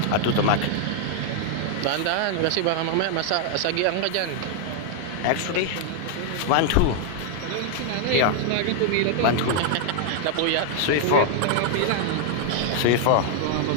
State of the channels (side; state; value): both; different; correlation 0.00